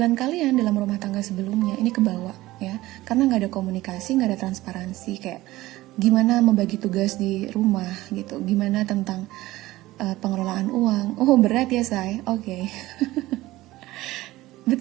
kalian dalam rumah tangga sebelumnya ini kebawa ya, karena nggak ada komunikasi, nggak ada transparansi, kayak gimana membagi tugas di rumah gitu, gimana tentang pengelolaan uang. Oh berat ya say, oke. But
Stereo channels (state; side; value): quieter; left; 17.6 dB